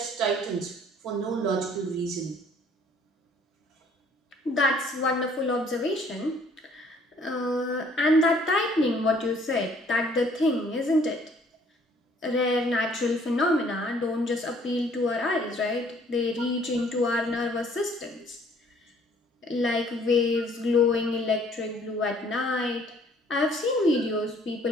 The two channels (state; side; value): normal; both; correlation 0.59